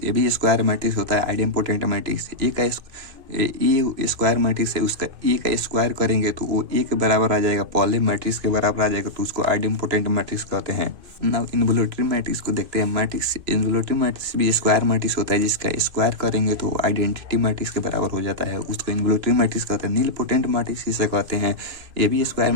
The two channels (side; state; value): left; late; 2.5 ms